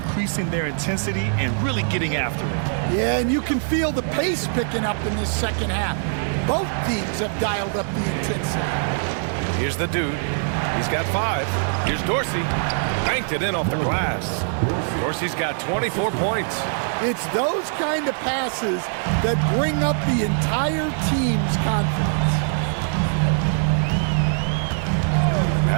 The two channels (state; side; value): silent; left; 64 dB below the other